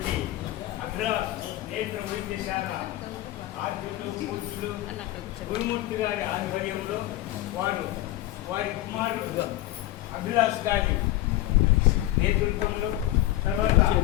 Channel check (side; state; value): right; quieter; 15.6 dB